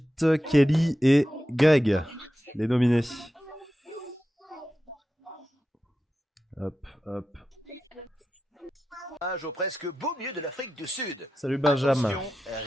Kelly et Greg, les nominés. Hop. Au presque beau milieu de l'Afrique du Sud. Salut Benjamin. Attention,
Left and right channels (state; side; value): normal; both; correlation 0.91